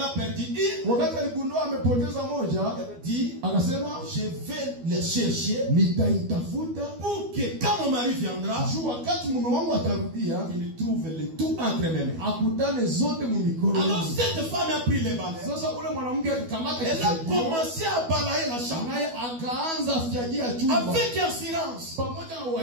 a perdu une, wakati aligundua amepoteza moja, elle dit, akasema, je vais le chercher, nitaitafuta pour que quand mon mari viendra, wakati mume wangu atarudia, il trouve le tout entre mes mains. Akutane zote mumikono. Alors cette femme a pris les balais. Sasa ule mwanamke akakamata, elle a commencé à balayer la chambre. Naye akaanza fiagia chumba. Avec assurance. Pamoja na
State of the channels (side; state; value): left; late; 12 ms